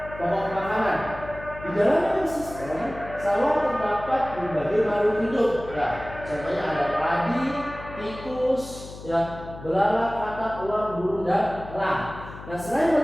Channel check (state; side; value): noise; left; hum, 14 dB below the sound